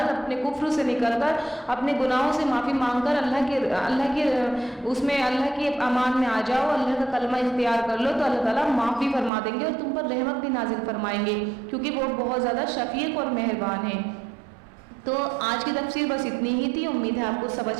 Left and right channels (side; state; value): left; drops out; at 9.3 s